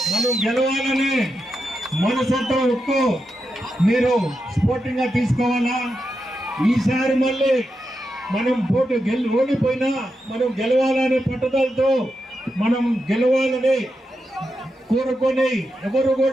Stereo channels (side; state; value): both; normal; correlation 0.87